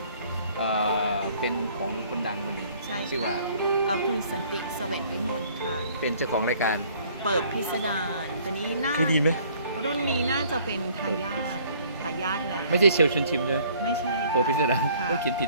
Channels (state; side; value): inverted; both; correlation -0.57